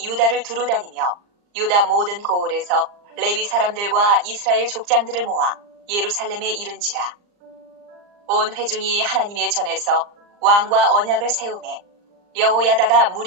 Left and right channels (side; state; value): left; late; 39 ms